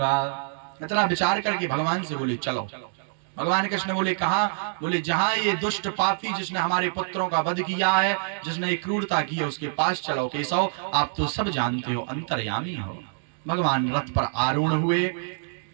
इतना विचार करके भगवान से बोले चलो। भगवान कृष्ण बोले कहा? बोले जहां ये दुष्ट पापी जिसने हमारे पुत्रों का वध किया है, जिसने ये क्रूरता की है, उसके पास चलो। केशव आप तो सब जानते हो, अंतर्यामी हो। भगवान रथ पर आरूढ़ हुए,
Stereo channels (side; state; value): left; silent; digital silence